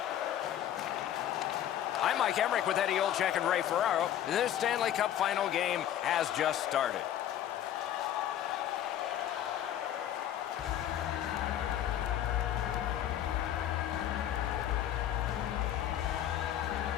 I'm Mike Emmerich with Eddie Olczyk and Ray Ferraro. This Stanley Cup final game has just started.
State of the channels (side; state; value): right; quieter; 11.2 dB